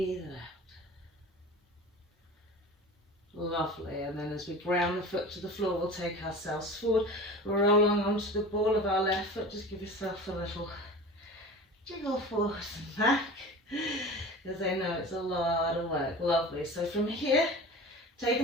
it out. Lovely. And then as we ground the foot to the floor, we'll take ourselves forward. We'll roll on onto the ball of our left foot. Just give yourself a little jiggle forward and back, because I know it's a lot of work. Lovely. So from here,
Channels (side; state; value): both; normal; correlation 0.36